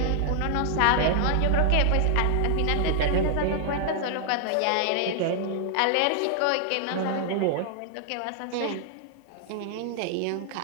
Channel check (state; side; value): different; both; correlation 0.00